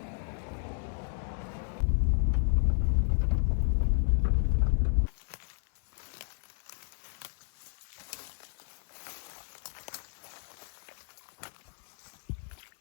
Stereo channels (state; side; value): silent; right; 56 dB below the other